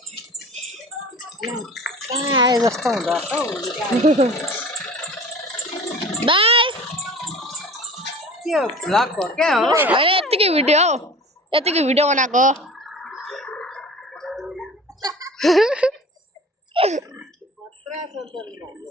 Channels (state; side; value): normal; both; correlation 0.41